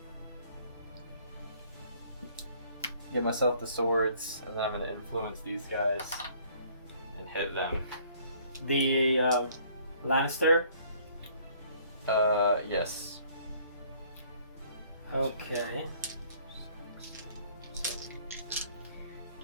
get myself the swords, and then I'm gonna influence these guys and hit them. The Lannister. Yes. Okay.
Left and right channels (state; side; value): inverted; both; correlation -0.59